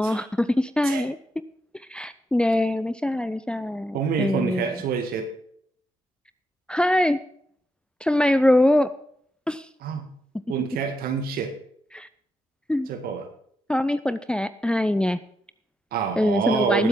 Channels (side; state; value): both; normal; correlation 0.83